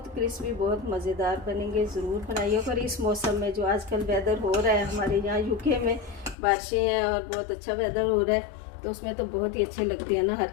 क्रिस्पी, बहुत मज़ेदार बनेंगे, ज़रूर बनाइए। और इस मौसम में जो आजकल वेदर हो रहा है हमारे यहाँ यूके में, बारिशें हैं और बहुत अच्छा वेदर हो रहा है, तो उसमें तो बहुत ही अच्छे लगते हैं ना हर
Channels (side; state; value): right; drops out; at 6.4 s